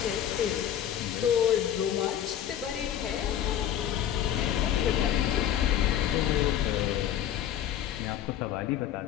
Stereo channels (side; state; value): right; quieter; 10.6 dB